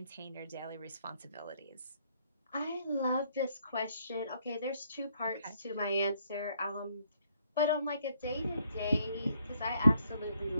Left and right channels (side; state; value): both; inverted; correlation -0.69